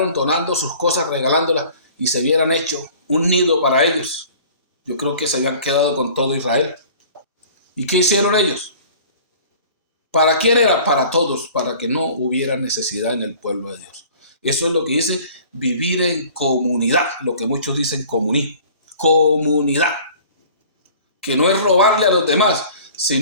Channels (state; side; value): inverted; both; correlation -0.47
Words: donando sus cosas, regalándolas, y se hubieran hecho un nido para ellos, yo creo que se habían quedado con todo Israel. ¿Y qué hicieron ellos? ¿Para quién era? Para todos, para que no hubiera necesidad en el pueblo de Dios. Eso es lo que dice vivir en comunidad, lo que muchos dicen comunismo. Comunidad, que no es robarle a los demás,